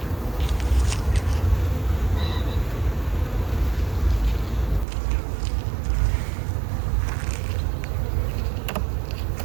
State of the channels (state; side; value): drops out; left; at 4.9 s